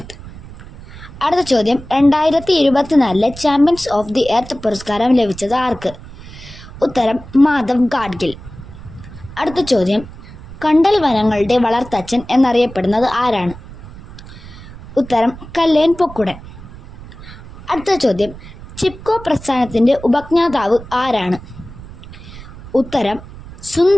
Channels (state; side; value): noise; right; rumble, 16 dB below the sound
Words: അടുത്ത ചോദ്യം: 2024 ചാമ്പ്യൻസ് ഓഫ് ദി എർത്ത് പുരസ്കാരം ലഭിച്ചത് ആർക്ക്? ഉത്തരം മാധവ് ഗാഡ്ഗിൽ. അടുത്ത ചോദ്യം: കണ്ടൽ വനങ്ങളുടെ വളർത്തച്ഛൻ എന്നറിയപ്പെടുന്നത് ആരാണ്? ഉത്തരം കല്ലേൻ പൊക്കുടൻ. അടുത്ത ചോദ്യം: ചിപ്കോ പ്രസ്ഥാനത്തിൻ്റെ ഉപജ്ഞാതാവ് ആരാണ്? ഉത്തരം